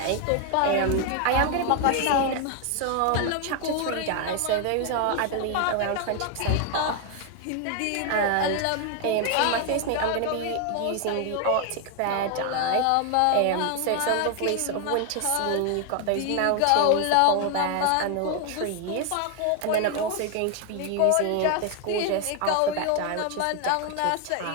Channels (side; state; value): both; different; correlation 0.01